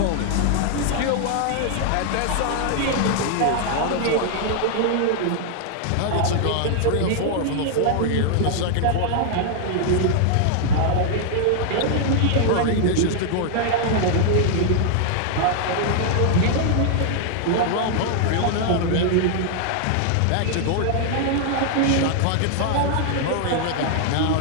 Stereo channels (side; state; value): both; different; correlation 0.00